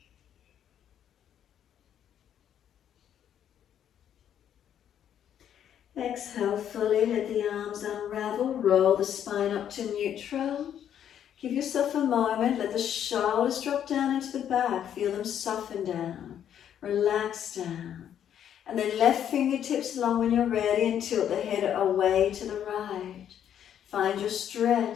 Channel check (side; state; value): right; quieter; 9.7 dB